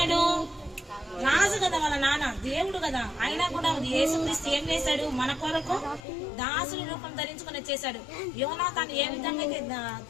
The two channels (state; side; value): drops out; right; at 6.0 s